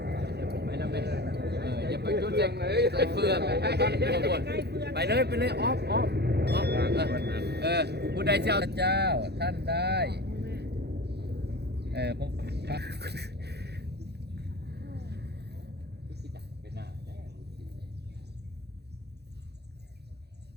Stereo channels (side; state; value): left; late; 0.48 ms